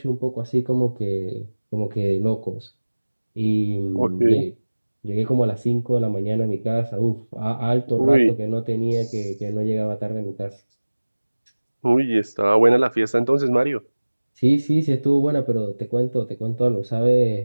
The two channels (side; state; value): both; inverted; correlation -1.00